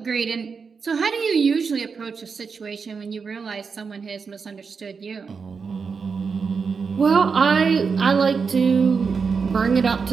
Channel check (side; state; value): left; quieter; 5.4 dB